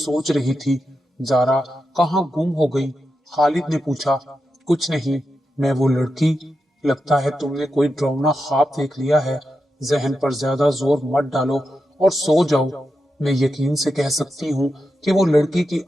رہی تھی۔ زارا کہاں گم ہو گئی؟ خالد نے پوچھا۔ کچھ نہیں، میں وہ لڑکی، لگتا ہے تم نے کوئی ڈراؤنا خواب دیکھ لیا ہے۔ ذہن پر زیادہ زور مت ڈالو اور سو جاؤ۔ میں یقین سے کہہ سکتی ہوں کہ وہ لڑکی کی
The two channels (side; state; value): both; normal; correlation 0.88